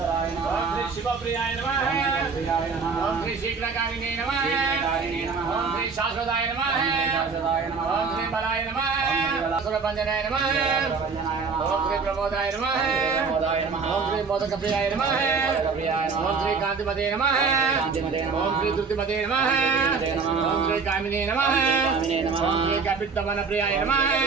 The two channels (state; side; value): quieter; left; 5.0 dB